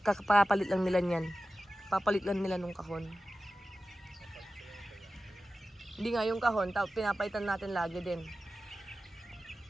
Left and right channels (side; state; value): both; normal; correlation 0.94